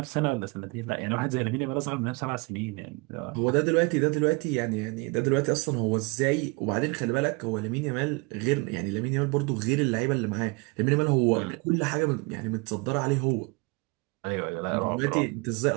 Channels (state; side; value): quieter; left; 28.4 dB